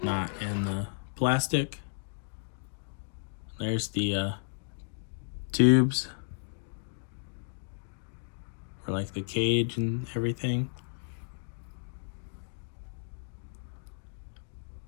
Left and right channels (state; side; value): silent; right; digital silence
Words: not in the plastic. There's the tubes for like the cage and everything.